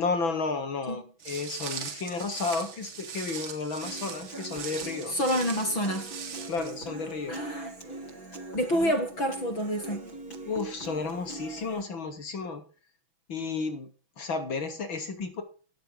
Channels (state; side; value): late; right; 6.1 ms